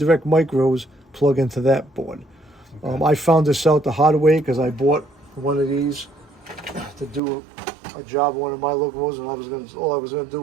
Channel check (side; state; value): left; drops out; at 7.2 s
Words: micros plug into that board. Okay. I found this out the hard way because I bought one of these to do a job on one of my locomotives, and all I was gonna